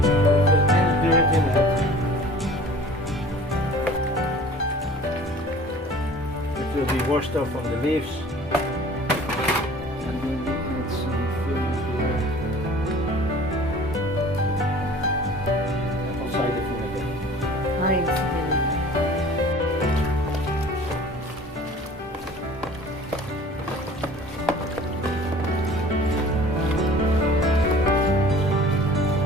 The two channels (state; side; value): normal; both; correlation 0.46